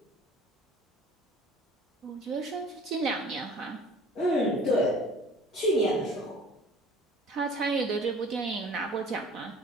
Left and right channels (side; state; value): both; normal; correlation 0.48